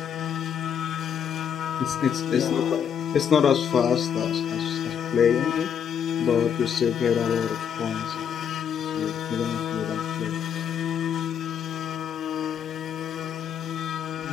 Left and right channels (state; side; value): quieter; right; 8.1 dB